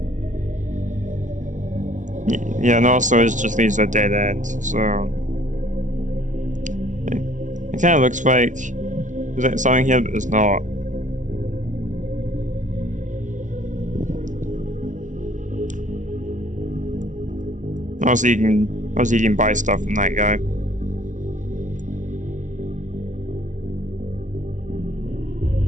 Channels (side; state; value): left; late; 0.37 ms